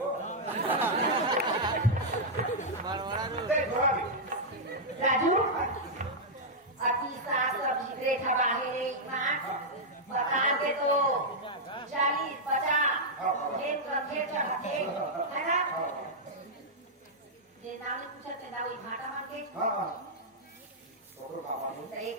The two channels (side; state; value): both; normal; correlation -0.06